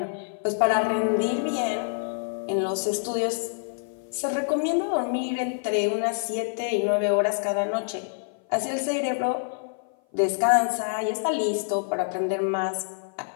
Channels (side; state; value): right; silent; 56 dB below the other